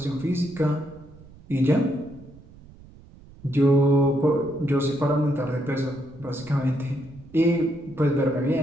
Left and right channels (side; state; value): right; noise; rumble, 22 dB below the sound